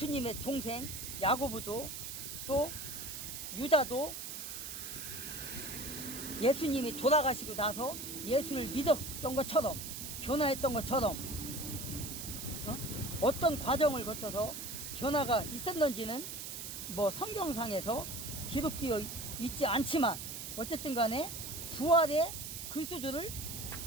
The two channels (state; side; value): noise; right; hiss, 7 dB below the sound